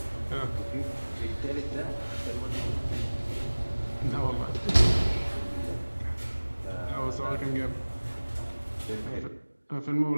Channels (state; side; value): inverted; both; correlation -1.00